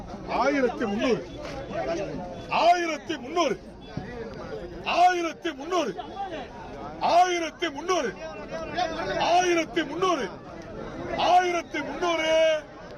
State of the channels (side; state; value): both; identical; correlation 1.00